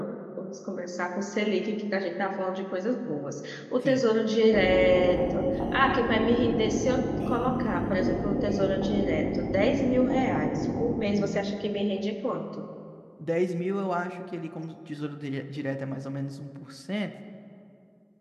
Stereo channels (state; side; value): identical; both; correlation 1.00